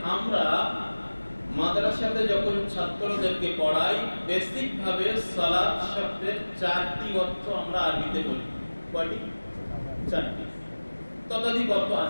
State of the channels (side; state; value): both; inverted; correlation -1.00